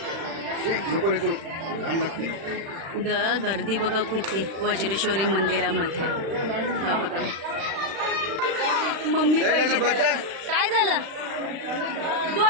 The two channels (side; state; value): left; late; 36 ms